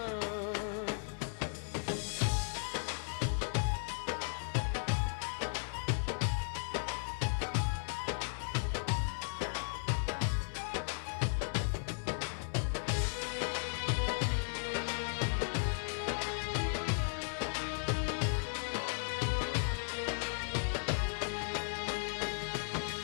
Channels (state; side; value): silent; right; 54 dB below the other